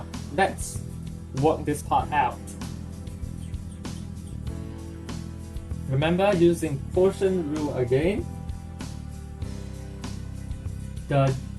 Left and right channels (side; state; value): both; identical; correlation 1.00